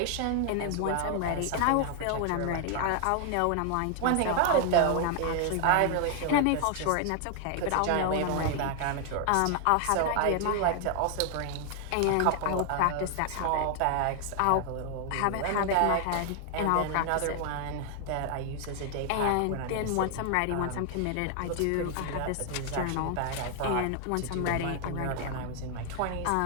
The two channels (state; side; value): different; both; correlation 0.00